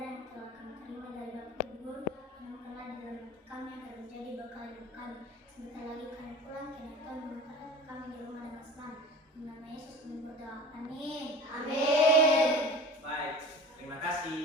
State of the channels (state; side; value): normal; both; correlation 0.38